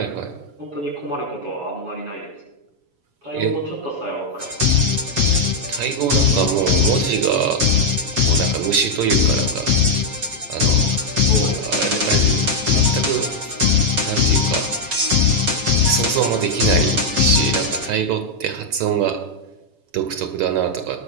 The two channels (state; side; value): late; left; 7.2 ms